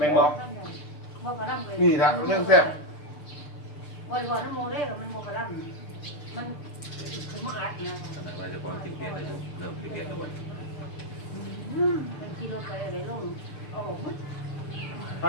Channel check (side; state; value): right; late; 6.8 ms